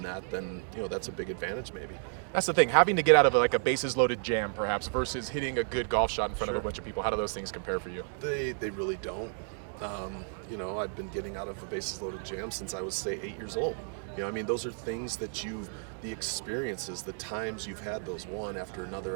that, then that's a big advantage maybe. That's the thing, having to get out of like a bases loaded jam perhaps versus hitting a good golf shot in front of a bunch of people. How do those things compare for you? They really don't. I've been getting out of a bases loaded jam since I was, say, 8 years old. Those are things that the experiences, the times you've had those one after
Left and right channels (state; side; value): silent; left; 56 dB below the other